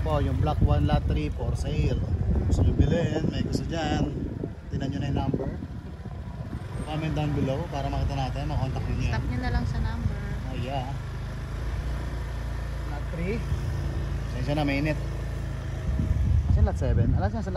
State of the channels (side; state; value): both; identical; correlation 1.00